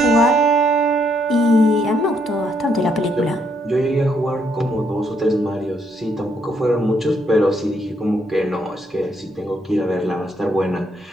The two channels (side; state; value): both; normal; correlation 0.73